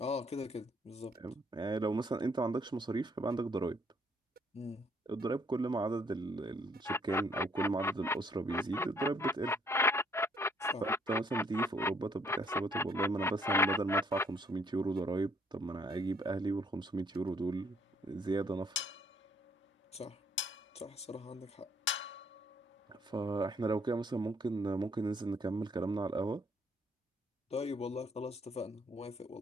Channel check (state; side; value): normal; both; correlation 0.65